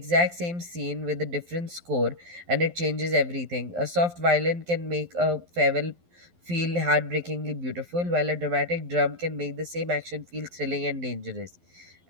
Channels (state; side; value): late; left; 12 ms